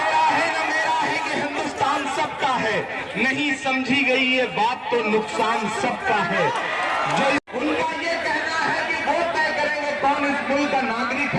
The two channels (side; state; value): both; identical; correlation 1.00